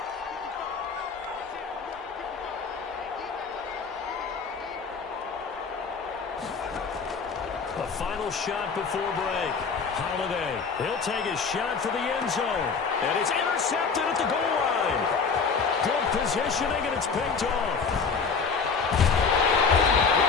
The final shot before break. Holiday, he'll take a shot for the end zone. And it's intercepted at the goal line. Good positioning, and it's picked off.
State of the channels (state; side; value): quieter; right; 5.3 dB